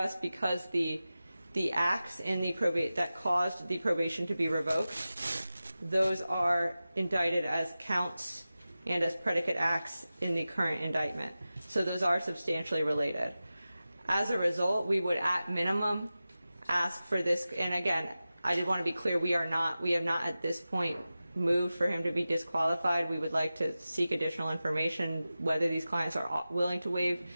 because the acts in the probate that caused the probation to be revoked, those are indicted as counts and as predicate acts in the current indictment. So those are substantially related. As a result, we would at minimum ask for this, and again, I did want to be clear, we have not at this point moved for him to be disqualified. We would like to seek additional information whether these clients are willing to waive.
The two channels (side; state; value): both; inverted; correlation -0.95